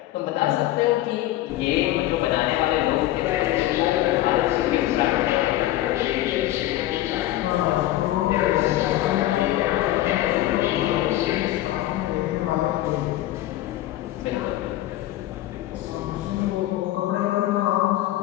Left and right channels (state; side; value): quieter; right; 14.9 dB